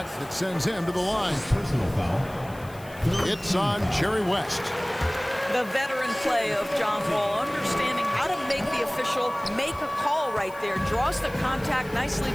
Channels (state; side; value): noise; left; hiss, 22 dB below the sound